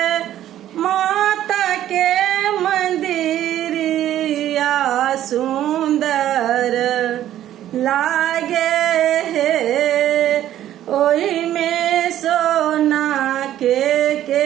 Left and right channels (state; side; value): quieter; left; 12.2 dB